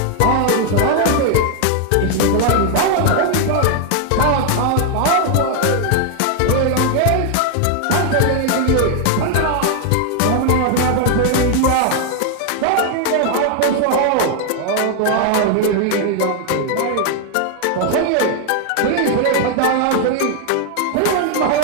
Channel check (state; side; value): different; both; correlation 0.00